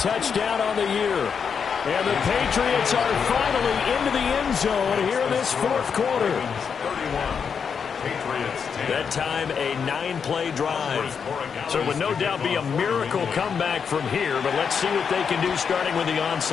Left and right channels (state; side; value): quieter; right; 6.5 dB